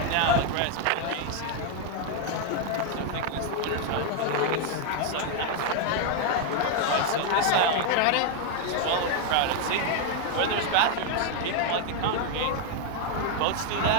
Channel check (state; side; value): different; both; correlation 0.00